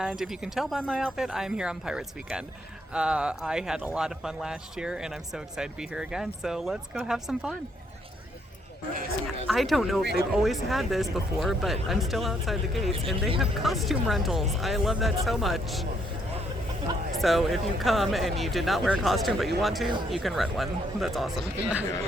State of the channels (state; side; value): normal; both; correlation 0.72